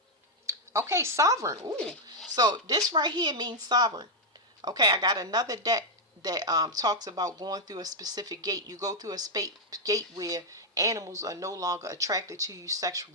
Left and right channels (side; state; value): both; normal; correlation -0.01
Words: Okay, sovereign. Ooh. So this right here means sovereign. Okay, I got another deck that talks about going through a specific gate. You go through a gate where animals are no longer attracted to you